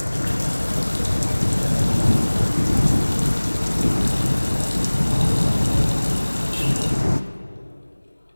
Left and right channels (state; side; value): inverted; both; correlation -1.00